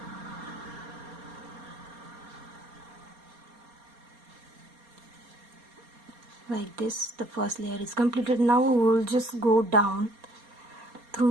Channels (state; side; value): late; left; 4.3 ms